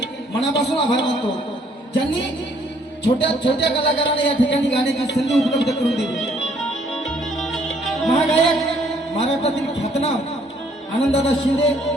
मनापासून आभार मानतो ज्यांनी छोट्या छोट्या कलाकारांना या ठिकाणी गाण्याची संधी उपलब्ध करून दिली। महागायक महाराष्ट्रातील ख्यातनाम आनंददादा शिंदे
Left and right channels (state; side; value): normal; both; correlation 0.64